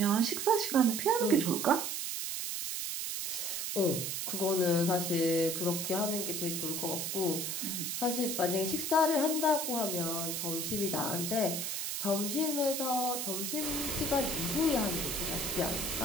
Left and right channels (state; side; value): noise; right; hiss, 2 dB below the sound